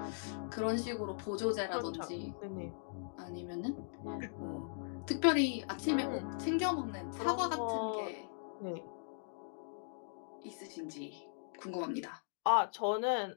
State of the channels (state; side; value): silent; right; digital silence